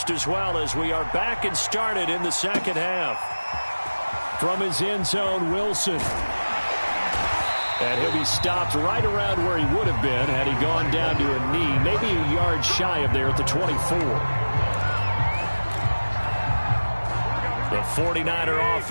as well as we are back and started in the second half. From his end zone, Wilson. And he'll be stopped right around where he would have been had he gone down to a knee, maybe a yard shy of there at the 24. The 49er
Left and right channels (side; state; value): both; inverted; correlation -1.00